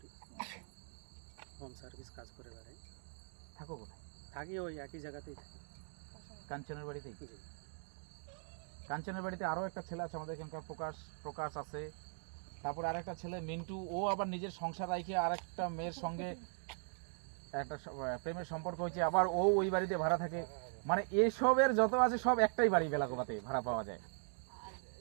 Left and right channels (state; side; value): silent; left; 51 dB below the other